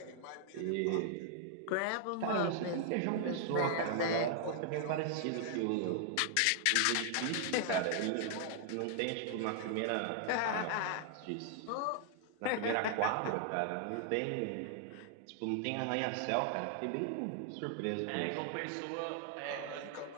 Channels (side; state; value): both; different; correlation 0.00